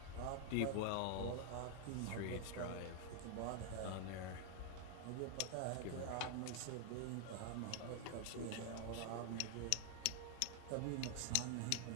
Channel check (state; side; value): different; both; correlation 0.00